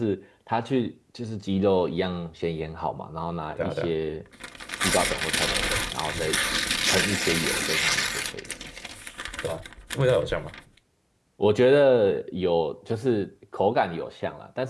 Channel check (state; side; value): identical; both; correlation 1.00